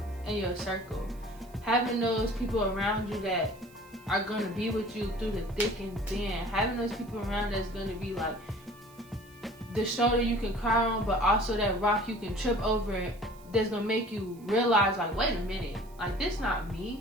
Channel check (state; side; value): noise; right; hiss, 26 dB below the sound